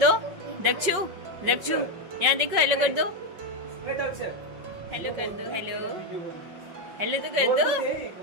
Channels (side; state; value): left; late; 5.5 ms